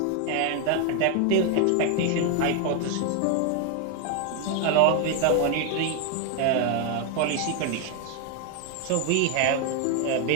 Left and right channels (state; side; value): different; both; correlation 0.00